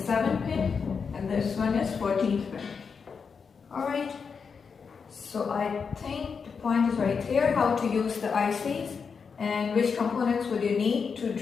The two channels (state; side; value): quieter; right; 5.8 dB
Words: 7 pin, and this one is 14th pin. Alright, so I think the point is very clear how to use the ICs and which components would you need to